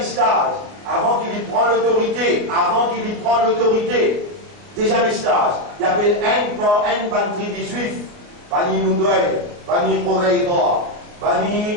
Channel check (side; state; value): left; late; 29 ms